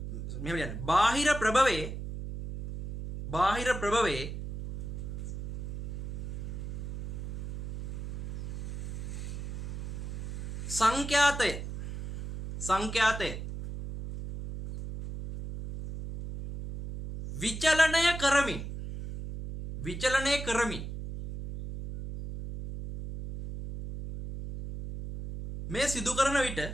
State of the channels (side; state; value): right; noise; hum, 7 dB below the sound